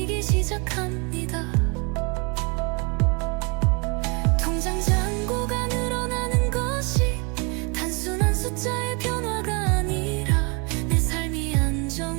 시작합니다. 통장 잔고가 늘어나는 것이 단순한 숫자의 변화가 아니라 내 삶이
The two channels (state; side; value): quieter; left; 31.4 dB